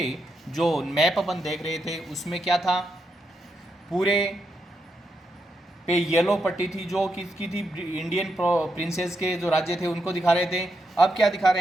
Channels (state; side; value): normal; both; correlation 0.83